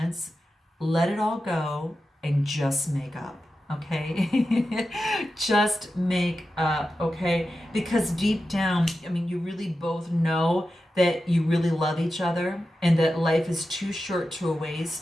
let it all go, and just make up. Okay, just make up, okay? Because deep down, you really both know that you really love each other, and that life is too short to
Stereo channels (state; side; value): normal; both; correlation 0.91